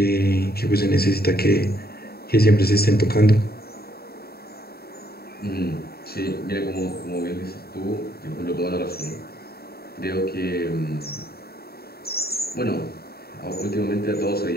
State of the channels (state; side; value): late; right; 0.45 ms